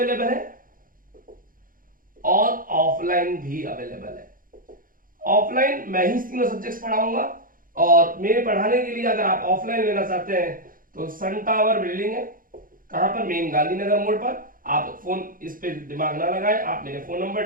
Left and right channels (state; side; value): late; left; 0.40 ms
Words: है और ऑफलाइन भी अवेलेबल है। ऑफलाइन मैं ही तीनों सब्जेक्ट्स पढ़ाऊंगा, और मेरे पढ़ाने के लिए अगर आप ऑफलाइन लेना चाहते हैं तो सन टावर बिल्डिंग है, कहां पर, मेन गांधीनगर मोड़ पर। आप फोन इस पे दिमाग ना लगाएं, आप मेरे फोन नंबर